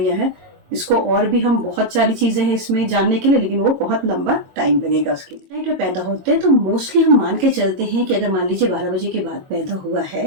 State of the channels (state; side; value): late; left; 22 ms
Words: हैं। इसको और भी हम बहुत सारी चीजें हैं इसमें जानने के लिए, लेकिन वो बहुत लंबा टाइम लगेगा उसके लिए। नाइट में पैदा होते हैं तो मोस्टली हम मान के चलते हैं कि अगर मान लीजिए 12 बजे के बाद पैदा हुआ